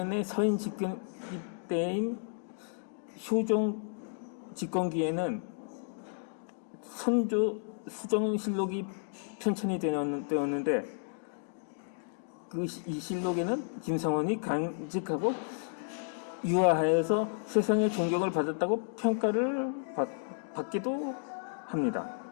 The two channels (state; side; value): silent; right; digital silence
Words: 서인 집권 때인 효종 집권기에는 선조 수정실록이 편찬이 되었는데 이 실록에는 김상원이 간직하고 유화하여서 세상의 존경을 받았다고 평가를 받기도 합니다.